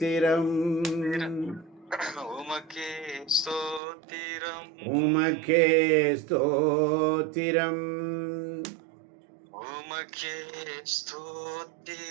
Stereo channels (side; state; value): left; drops out; at 3.8 s